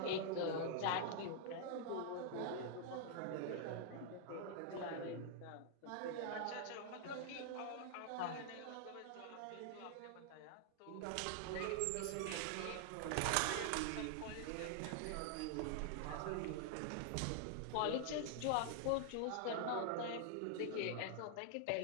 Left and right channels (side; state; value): both; different; correlation 0.00